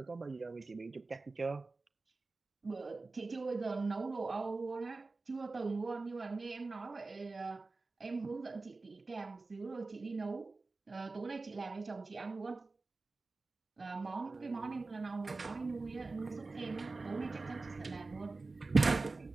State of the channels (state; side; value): quieter; left; 3.6 dB